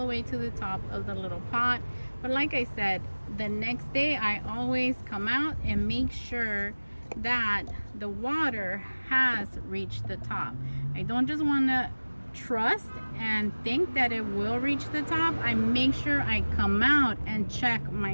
way to the top of the little pot. But like I said, the next day I always come out and make sure that the water has reached the top. I don't just want to trust and think that it will reach the top. I make sure I come out and check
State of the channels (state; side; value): inverted; both; correlation -1.00